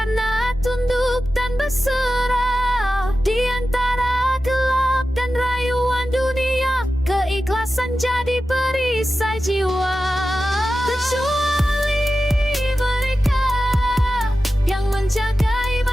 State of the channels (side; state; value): both; normal; correlation 0.93